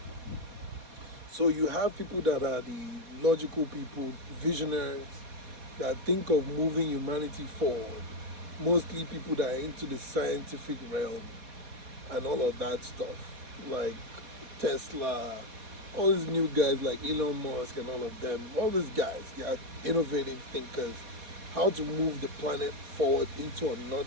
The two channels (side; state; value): left; late; 4.2 ms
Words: So you have people that are the logical people, visionaries, that think of moving humanity forward. Mostly people that are into the scientific realm and all of that stuff, like Tesla, all these new guys like Elon Musk and all of them, all these guys, they are innovative thinkers, how to move the planet forward into